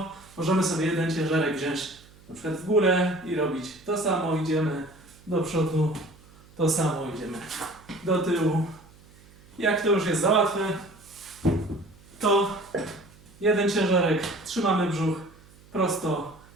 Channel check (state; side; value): noise; right; hum, 25 dB below the sound